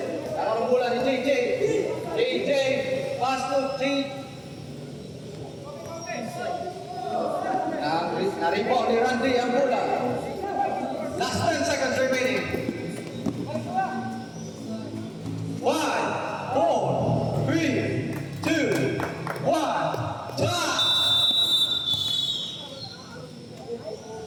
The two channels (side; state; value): both; identical; correlation 1.00